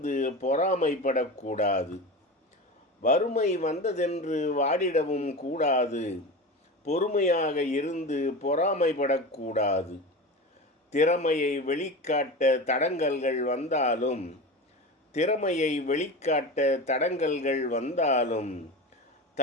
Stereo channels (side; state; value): both; normal; correlation 0.27